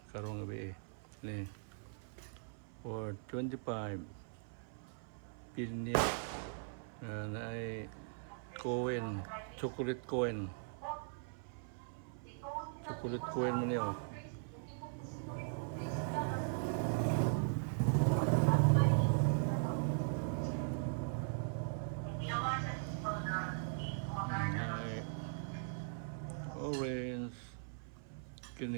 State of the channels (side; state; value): left; silent; 51 dB below the other